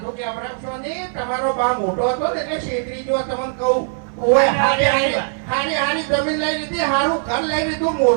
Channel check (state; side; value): silent; left; digital silence